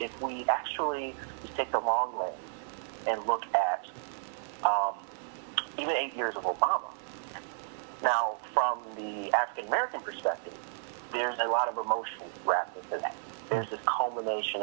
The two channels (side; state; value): left; silent; 56 dB below the other